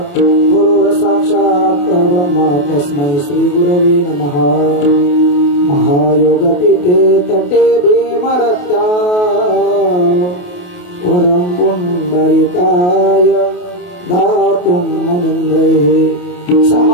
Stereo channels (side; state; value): right; late; 28 ms